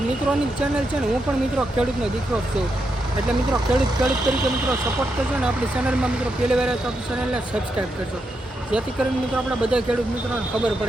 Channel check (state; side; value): normal; both; correlation 0.83